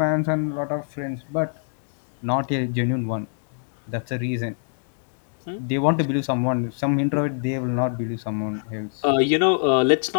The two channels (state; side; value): silent; right; digital silence